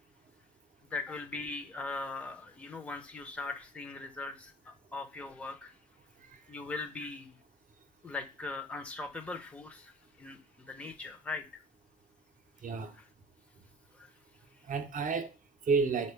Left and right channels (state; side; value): normal; both; correlation 0.43